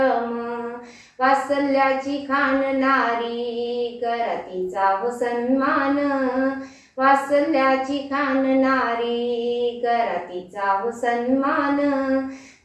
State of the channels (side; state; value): both; identical; correlation 1.00